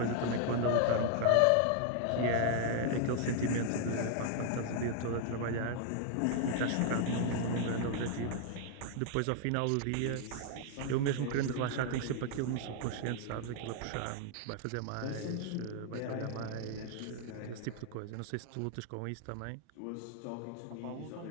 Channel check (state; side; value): different; both; correlation 0.00